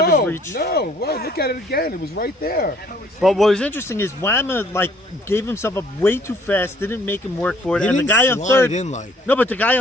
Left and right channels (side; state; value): both; normal; correlation 0.60